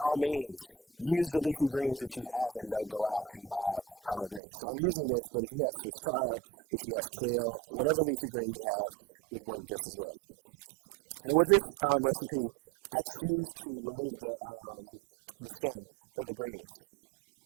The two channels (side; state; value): left; drops out; at 4.4 s